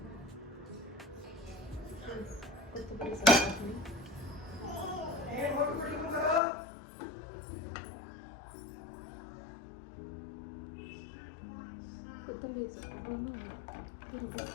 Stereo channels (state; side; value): drops out; right; at 6.4 s